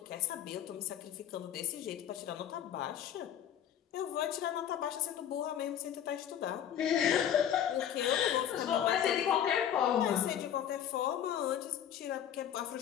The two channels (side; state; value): right; quieter; 9.8 dB